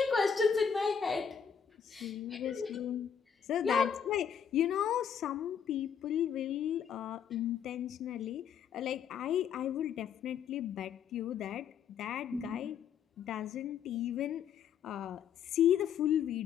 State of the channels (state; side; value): quieter; right; 7.8 dB